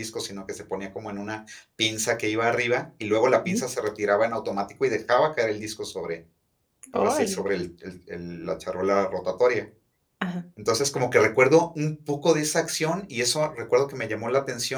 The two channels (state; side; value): identical; both; correlation 1.00